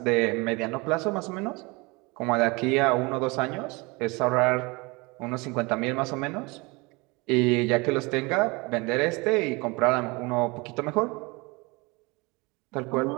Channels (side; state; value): left; quieter; 26.1 dB